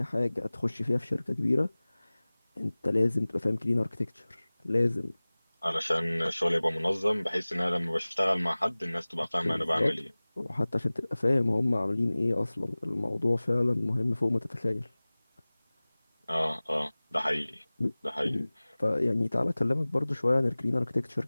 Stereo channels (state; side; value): inverted; both; correlation -0.99